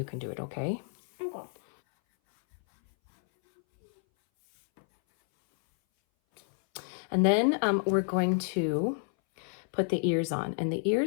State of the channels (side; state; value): right; silent; 58 dB below the other